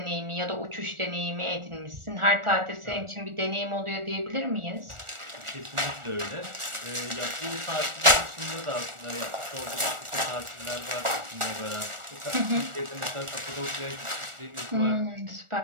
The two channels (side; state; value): left; late; 1.4 ms